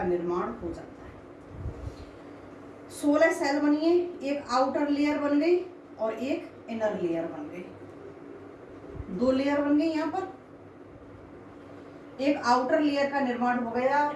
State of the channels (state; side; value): identical; both; correlation 1.00